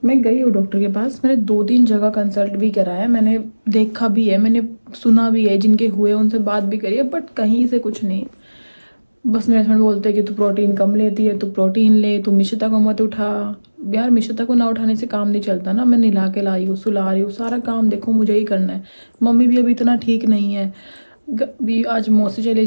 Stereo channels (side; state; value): both; inverted; correlation -1.00